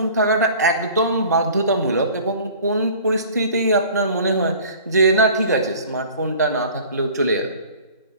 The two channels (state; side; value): inverted; both; correlation -0.46